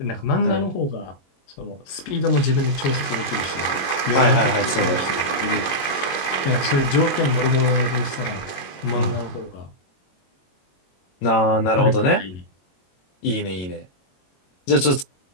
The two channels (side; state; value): right; late; 22 ms